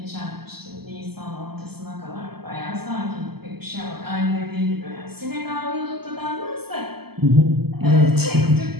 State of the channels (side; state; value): left; late; 0.96 ms